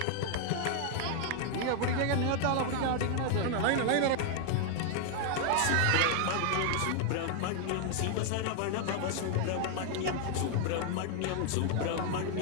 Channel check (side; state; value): both; different; correlation 0.00